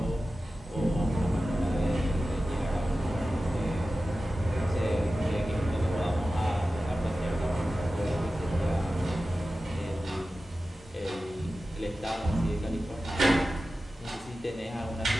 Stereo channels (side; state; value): both; normal; correlation 0.94